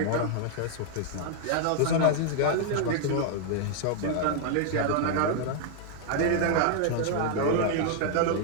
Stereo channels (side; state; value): both; different; correlation 0.00